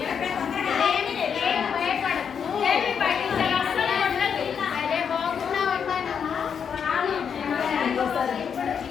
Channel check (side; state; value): right; quieter; 7.2 dB